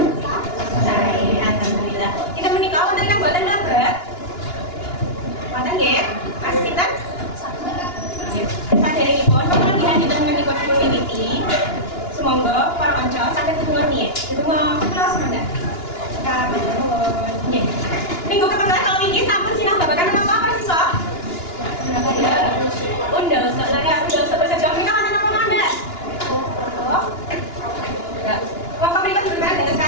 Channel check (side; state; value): right; late; 2.9 ms